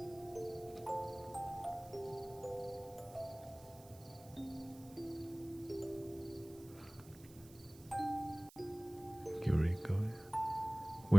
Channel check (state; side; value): noise; right; hiss, 21 dB below the sound